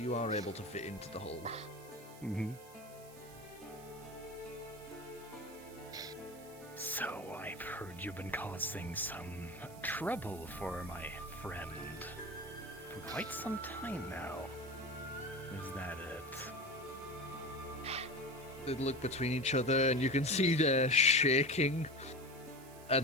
are able to fit into the hold. Mm-hmm. So I've heard you've been causing some trouble for my friend for quite some time now. Is that it? They look between each other, and you can see they're shaking.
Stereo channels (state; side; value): noise; right; hiss, 20 dB below the sound